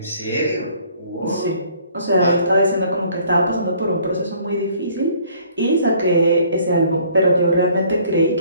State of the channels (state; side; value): inverted; both; correlation -0.58